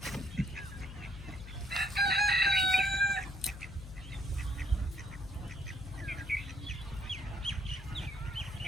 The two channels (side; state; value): left; noise; hum, 12 dB below the sound